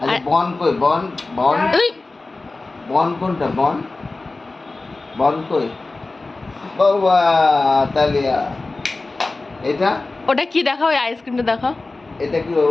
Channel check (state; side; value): quieter; right; 3.4 dB